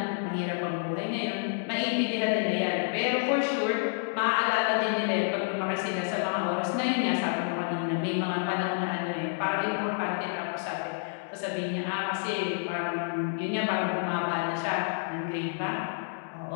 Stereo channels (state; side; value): silent; right; digital silence